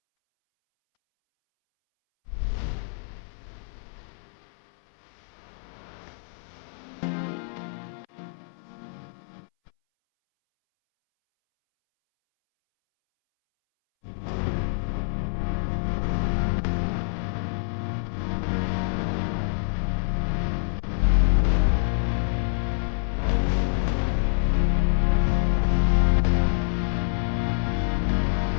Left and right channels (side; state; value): right; silent; 61 dB below the other